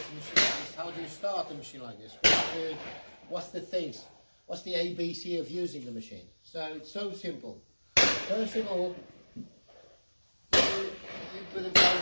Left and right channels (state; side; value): inverted; both; correlation -1.00